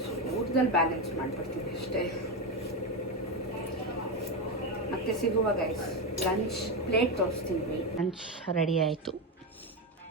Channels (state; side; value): normal; both; correlation 0.12